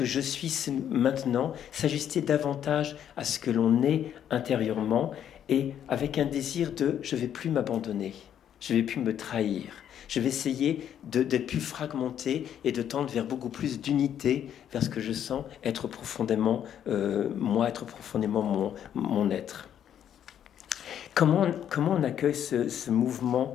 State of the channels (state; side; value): quieter; right; 9.7 dB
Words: je suis maintenant? S'ajuster davantage à ce que l'on est intérieurement et avec un désir de je ne vais plus m'abandonner, je ne vais plus me trahir. Je vais essayer d'être plus fragmenté et de tendre vers beaucoup plus d'unité, vers ce que je sens être profondément moi, être profondément mon être. Comment on accueille ce mouvement